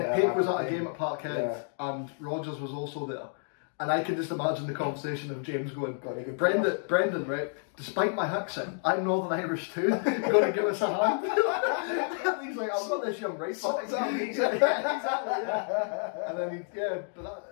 was at a game at Parkhead, and Rodgers was also there. And I can just imagine the conversation of James going, Brendan, right, despite my accent, I'm Northern Irish too, you're going to give us a hand? And he's like, I've got this young right back. Exactly. And then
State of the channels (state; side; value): silent; right; 58 dB below the other